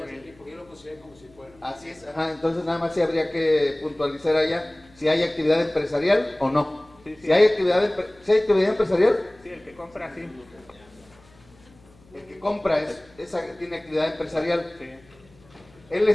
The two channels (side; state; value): left; noise; hum, 28 dB below the sound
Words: Así es, ajá, entonces nada más sí habría que puntualizar allá si hay actividad empresarial o no. Sí, sí. Si hay actividad empresarial, Sí, el que compra, sí. el que compra tiene actividad empresarial. Sí. Él